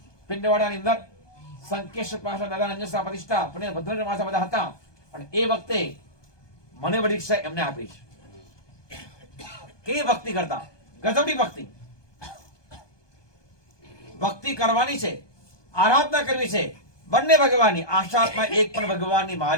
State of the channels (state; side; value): late; right; 1.2 ms